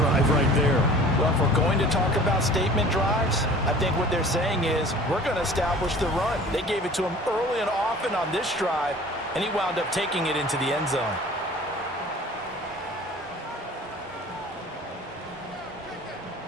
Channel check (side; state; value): both; normal; correlation 0.46